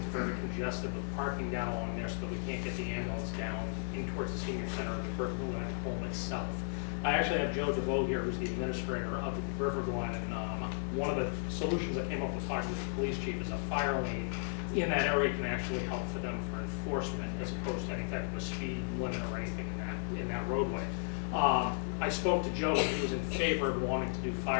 very congested with parking down along there so that we can't get the ambulance down in towards the senior center of the River Glen home itself. I actually have Joe DeVoe here, who's the administrator of the River Glen, and one of the solutions I came up with talking with the police chief is a fire lane in that area can actually help for them for enforcement as opposed to any type of a speed limit or anything in that roadway. I spoke to Joe, and he was in favor of wanting to do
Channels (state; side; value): silent; right; 55 dB below the other